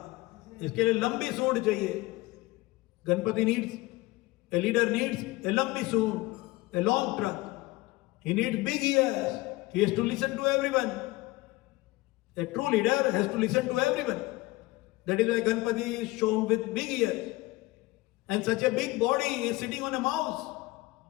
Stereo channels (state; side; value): quieter; right; 20.1 dB